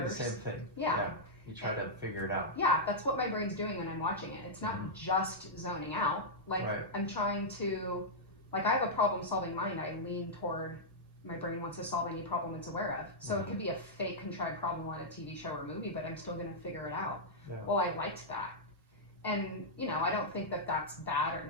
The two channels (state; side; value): normal; both; correlation -0.08